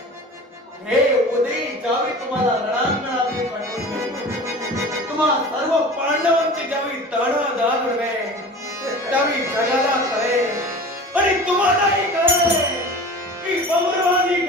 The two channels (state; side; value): normal; both; correlation 0.38